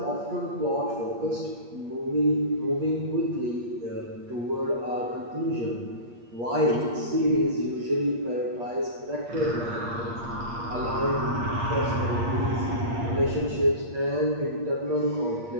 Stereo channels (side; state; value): left; late; 8.5 ms